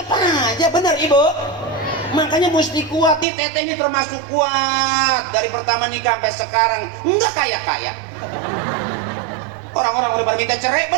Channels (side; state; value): left; drops out; at 3.2 s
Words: aja, bener Ibu. Makanya mesti kuat nih, teteh ini termasuk kuat dari pertama nikah sampai sekarang, nggak kaya-kaya. Orang-orang udah pada minta cerai,